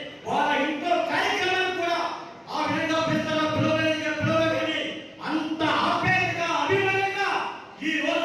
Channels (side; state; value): both; identical; correlation 1.00